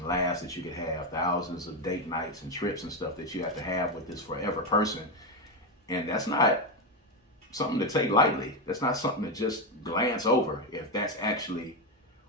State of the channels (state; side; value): normal; both; correlation 0.10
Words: laughs that you could have. Thousands of date nights and trips and stuff that you have to have with this forever person. And that's not something to take lightly. That's not something to just glance over if that's actually